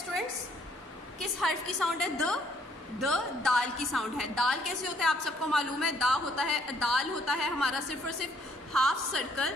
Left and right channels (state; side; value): normal; both; correlation 0.66